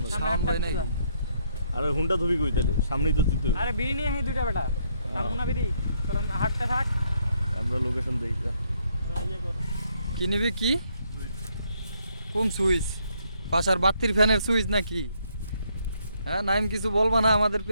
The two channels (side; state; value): both; inverted; correlation -0.72